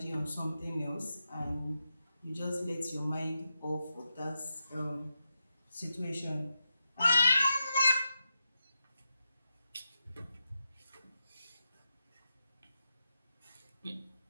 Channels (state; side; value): inverted; both; correlation -0.87